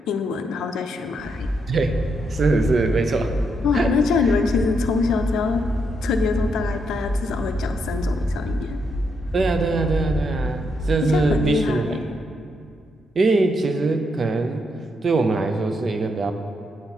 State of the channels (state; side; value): normal; both; correlation 0.79